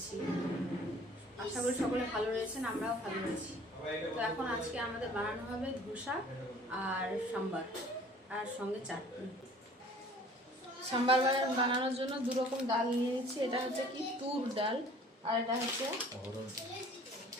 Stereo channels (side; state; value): both; normal; correlation 0.51